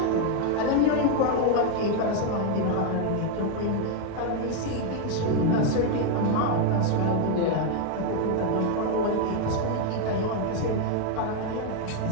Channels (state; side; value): different; both; correlation 0.01